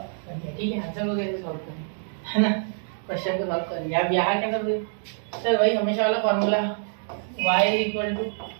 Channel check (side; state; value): left; silent; digital silence